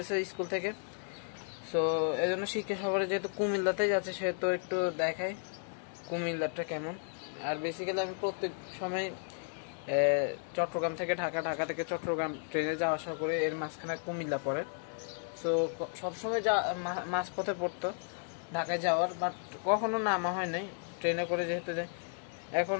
স্কুল থেকে। সো এই জন্য শিক্ষা সফরে যেহেতু কুমিল্লাতেই যাচ্ছে, সেহেতু একটু দেখাই কুমিল্লাটা কেমন। আর বেসিক্যালি আমি প্রত্যেক সময় চট্টগ্রাম থেকে ঢাকা, ঢাকা থেকে চট্টগ্রাম ট্রেনে যাওয়া আসা করে, এর মাঝখানে কুমিল্লা পড়ে। সো সবসময় মাঝপথে পড়তো ঢাকায় যাওয়ার, বাট কখনো নামা হয় নাই ট্রেনে করে, যেহেতু যাই। এখন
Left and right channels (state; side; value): silent; right; 55 dB below the other